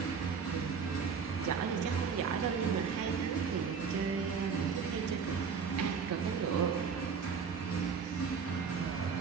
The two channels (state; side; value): quieter; left; 6.0 dB